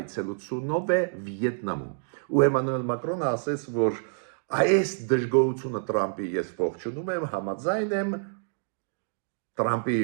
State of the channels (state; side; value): silent; left; digital silence